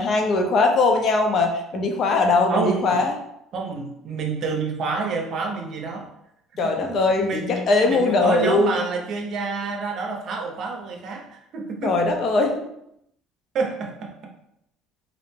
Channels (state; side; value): normal; both; correlation 0.53